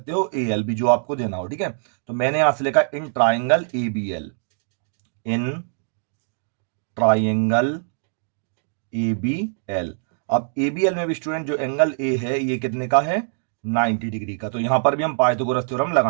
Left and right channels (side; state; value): left; silent; digital silence